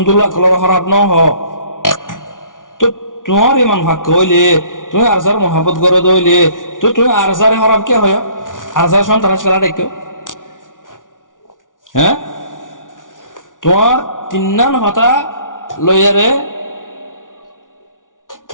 কলর খারাপ ন হ তো তোমার ইমান ভাগ্য হইলে তুমি আরসার মহাব্বত করে দইলে তো তুমি আরসারে খারাপ কে হয় আরসার সন্ত্রাস খেলা দেখো হ্যাঁ তোমার তিন্নান হতা লইয়ারে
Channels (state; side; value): late; right; 0.88 ms